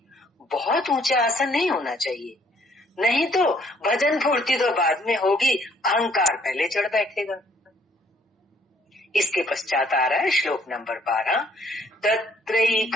बहुत ऊंचा आसन नहीं होना चाहिए, नहीं तो भजन फूर्ति तो बाद में होगी, अहंकार पहले चढ़ बैठेगा। इसके पश्चात आ रहा है श्लोक नंबर 12,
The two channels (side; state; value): both; normal; correlation 0.64